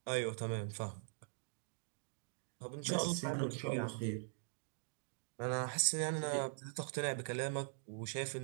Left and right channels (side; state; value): left; silent; digital silence